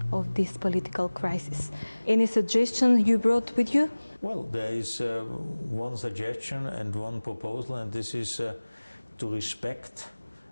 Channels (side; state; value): both; inverted; correlation -1.00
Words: of this political crisis? Any suggestion you brought with you? Well, there is one suggestion and one proposal, and this is to respect